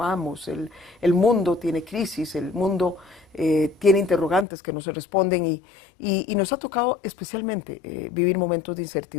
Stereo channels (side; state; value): right; drops out; at 4.5 s